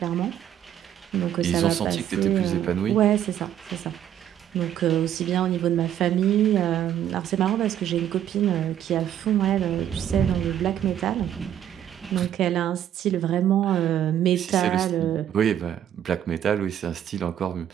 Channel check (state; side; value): quieter; left; 10.6 dB